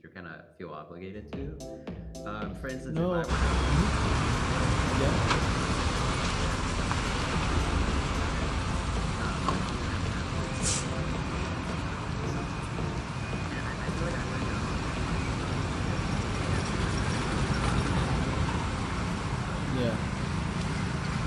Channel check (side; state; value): both; identical; correlation 1.00